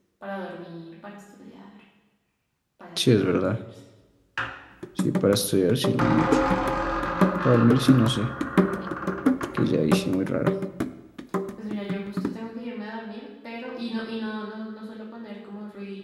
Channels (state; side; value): identical; both; correlation 1.00